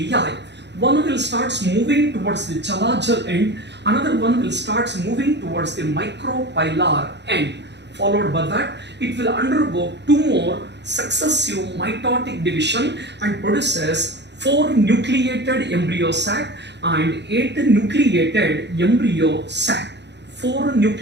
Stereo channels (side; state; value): left; late; 0.51 ms